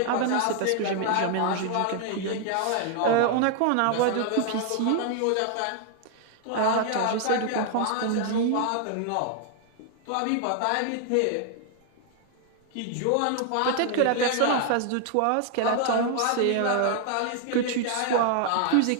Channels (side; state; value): both; different; correlation 0.00